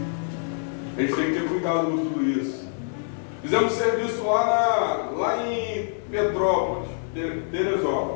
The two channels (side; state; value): right; silent; digital silence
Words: A gente tem que ter cuidado com tudo isso. Fizemos serviço lá em Petrópolis,